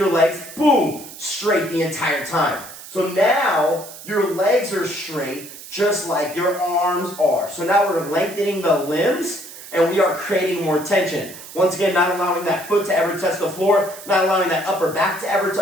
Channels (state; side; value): noise; right; hiss, 15 dB below the sound